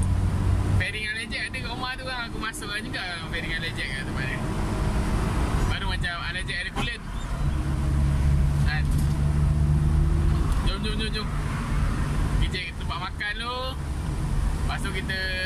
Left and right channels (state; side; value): identical; both; correlation 1.00